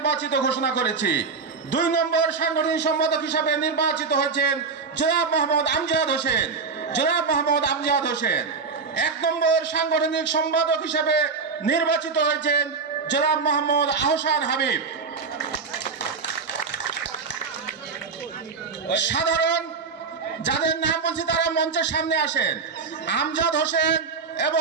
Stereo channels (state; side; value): quieter; left; 5.0 dB